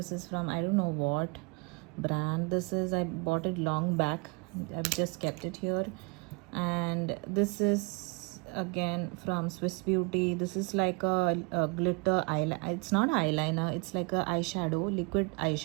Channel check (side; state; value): left; quieter; 31.0 dB